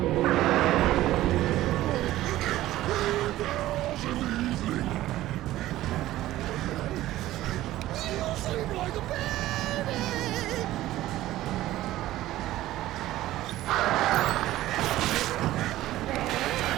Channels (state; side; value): quieter; left; 15.3 dB